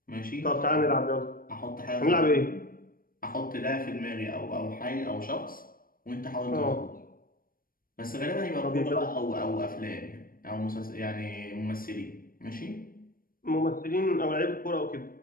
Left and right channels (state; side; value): late; right; 0.41 ms